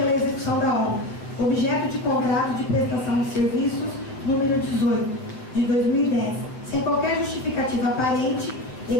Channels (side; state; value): right; late; 7.7 ms